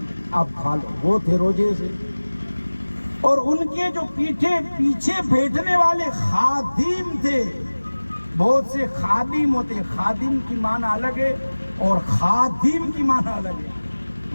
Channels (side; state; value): both; inverted; correlation -1.00